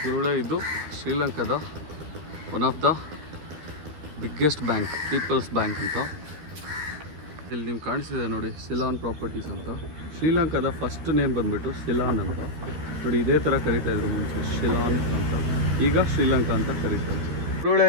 ಗುರುಳೆ ಇದು ಶ್ರೀಲಂಕಾದ one of the biggest bank, people's bank ಅಂತ. ಇಲ್ಲಿ ನಿಮ್ಗೆ ಕಾಣಿಸಿದೆ ನೋಡಿ, ಸಿಲಾನ್ ಪ್ರಾಪರ್ಟೀಸ್ ಅಂತ. ಶ್ರೀಲಂಕಾದ ಫಸ್ಟ್ ನೇಮ್ ಬಂದುಬಿಟ್ಟು ಸಿಲಾನ್ ಅಂತ ನೋಡಿ. ಇದೇ ಥರ ಕರೀತಾಯಿದ್ರು ಮುಂಚೆ, ಶಿಲಾನ್ ಅಂತ. ಈಗ ಶ್ರೀಲಂಕಾ ಅಂತ ಕರೀತಾರೆ.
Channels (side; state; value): left; late; 13 ms